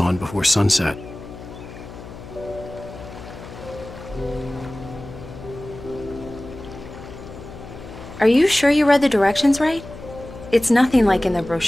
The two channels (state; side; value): noise; left; hum, 14 dB below the sound